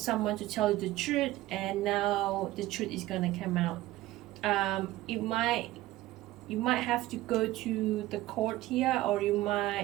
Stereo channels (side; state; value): left; quieter; 16.6 dB